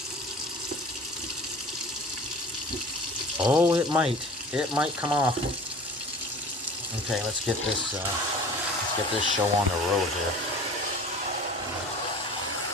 Oh, it might. It might come off. Okay, let's get this show on the road here.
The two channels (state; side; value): normal; both; correlation 0.41